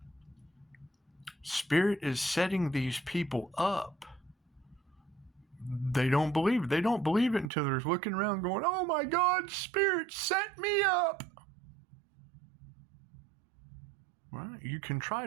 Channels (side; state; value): left; drops out; at 7.5 s